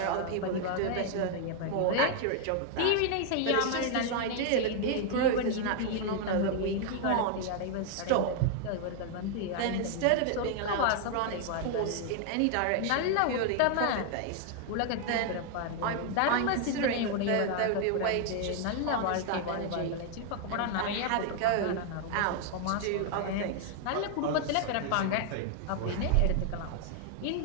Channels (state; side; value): different; both; correlation 0.00